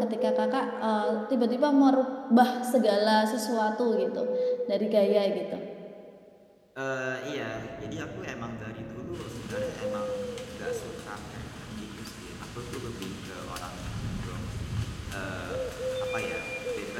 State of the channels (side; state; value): both; identical; correlation 1.00